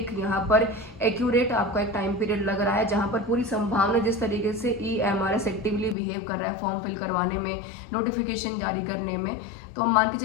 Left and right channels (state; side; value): drops out; right; at 6.0 s